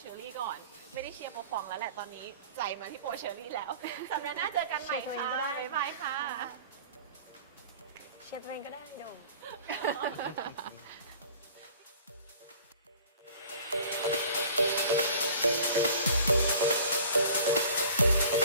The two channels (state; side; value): inverted; both; correlation -0.47